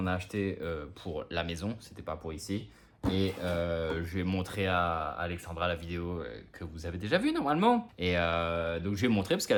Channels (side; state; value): both; identical; correlation 1.00